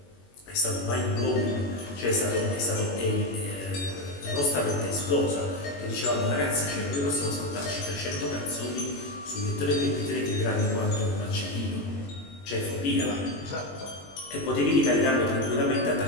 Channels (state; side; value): late; right; 21 ms